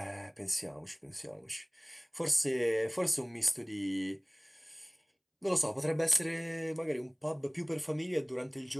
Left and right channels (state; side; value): identical; both; correlation 1.00